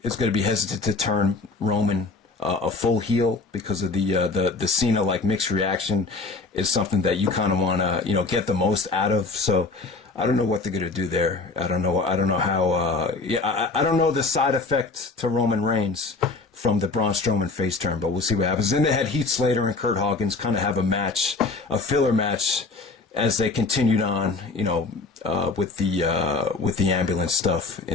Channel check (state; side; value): quieter; right; 3.8 dB